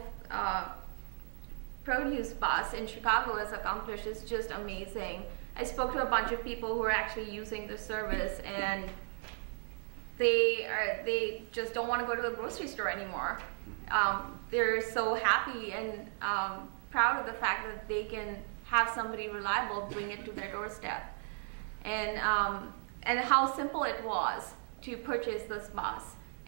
produce bus in Chicago has accomplished is just amazing. I spoke to a bunch of people who are actually using the service, and they just don't want to go to the grocery store anymore. They're so happy and proud of the fact that they can have somebody reliable bring it to their doorstep. And how simple it was to purchase this bus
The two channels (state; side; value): silent; left; 54 dB below the other